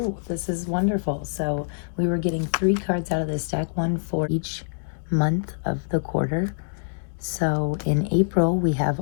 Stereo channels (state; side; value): silent; right; digital silence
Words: this is wonderful. So we were getting 3 cards out of this deck, one for each month of the quarter. So in April, we have